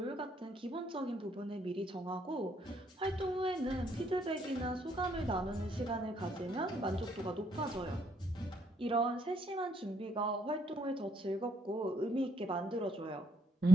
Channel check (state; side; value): normal; both; correlation 0.70